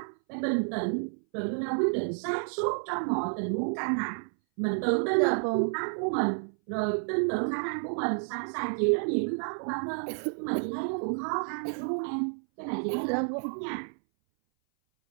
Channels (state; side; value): silent; left; 58 dB below the other